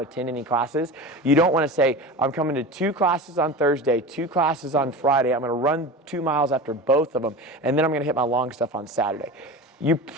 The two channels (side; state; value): both; normal; correlation 0.31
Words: attend any classes? You don't want to say, I'm coming to 2 classes on Thursday, 2 classes on Friday. I'm going to run 2 miles after both of them, and then I'm going to hit my long stuff on Saturday. You